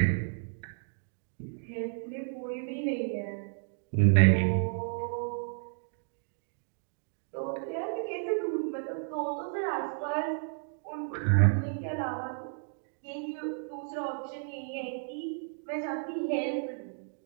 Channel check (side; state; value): left; silent; digital silence